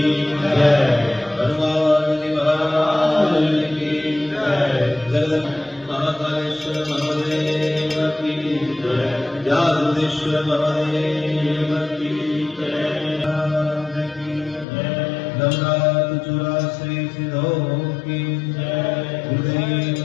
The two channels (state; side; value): drops out; right; at 14.7 s